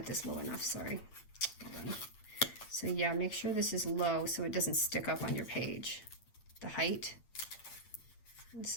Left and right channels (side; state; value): right; late; 8.7 ms